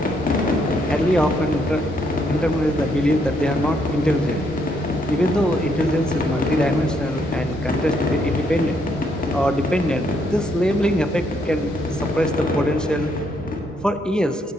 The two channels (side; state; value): both; normal; correlation 0.73